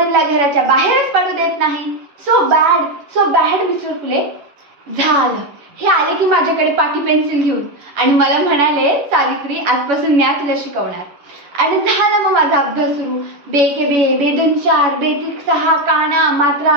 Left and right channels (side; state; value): left; late; 11 ms